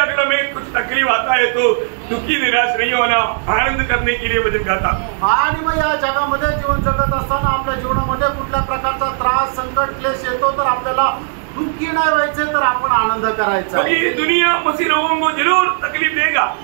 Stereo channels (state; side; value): silent; left; 64 dB below the other